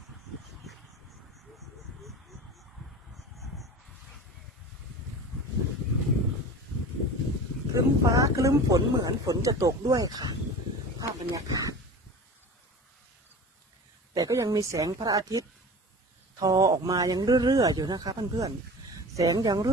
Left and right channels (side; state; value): both; normal; correlation 0.36